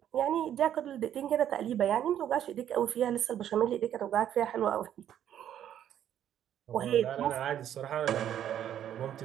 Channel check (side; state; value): left; quieter; 10.5 dB